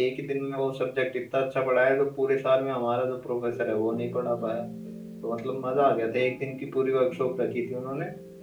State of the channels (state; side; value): identical; both; correlation 1.00